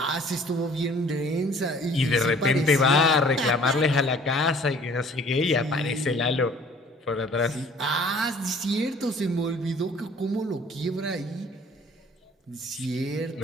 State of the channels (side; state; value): both; normal; correlation 0.53